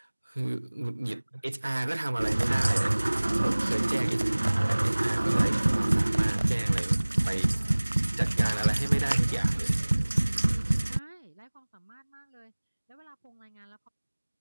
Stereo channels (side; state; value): both; inverted; correlation -1.00